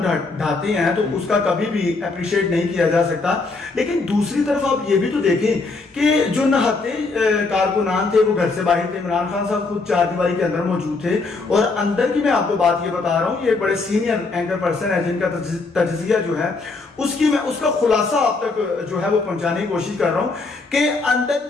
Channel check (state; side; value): quieter; right; 3.8 dB